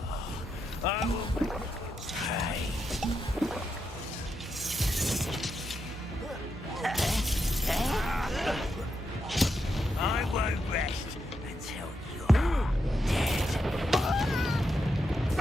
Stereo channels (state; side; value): normal; both; correlation 0.84